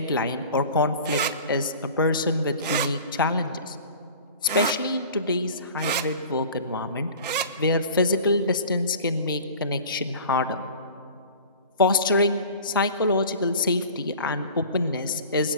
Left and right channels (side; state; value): both; inverted; correlation -0.41